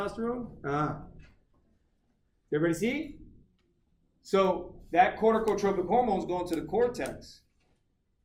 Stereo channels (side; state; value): both; identical; correlation 1.00